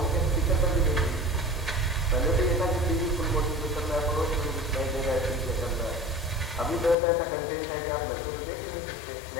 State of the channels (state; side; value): drops out; right; at 7.0 s